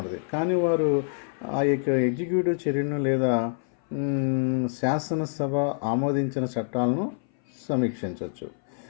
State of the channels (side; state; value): right; silent; 58 dB below the other